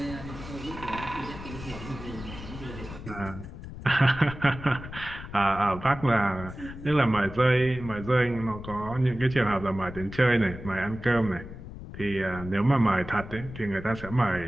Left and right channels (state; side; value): noise; left; rumble, 12 dB below the sound